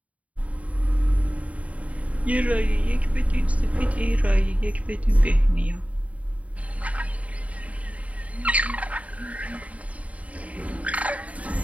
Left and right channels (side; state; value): left; late; 0.067 ms